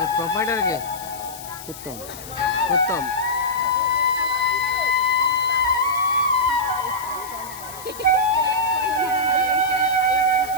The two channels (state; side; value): noise; left; hiss, 14 dB below the sound